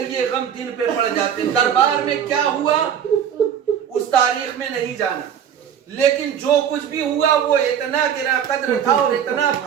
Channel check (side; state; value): left; quieter; 8.8 dB